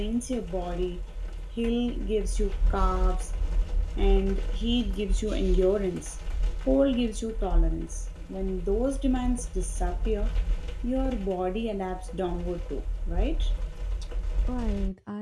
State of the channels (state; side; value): identical; both; correlation 1.00